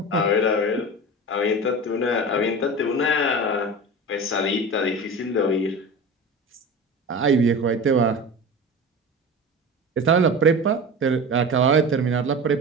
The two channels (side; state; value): both; normal; correlation 0.31